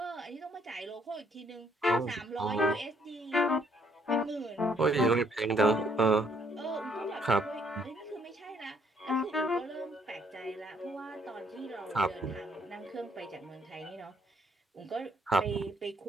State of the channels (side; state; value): both; normal; correlation 0.68